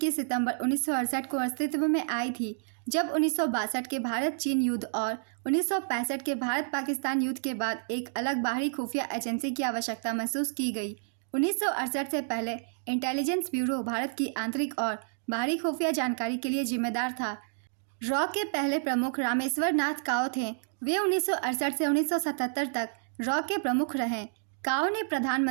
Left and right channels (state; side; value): silent; left; digital silence